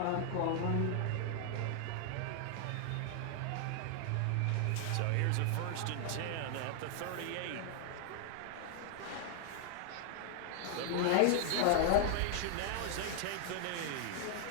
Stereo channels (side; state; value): both; different; correlation 0.00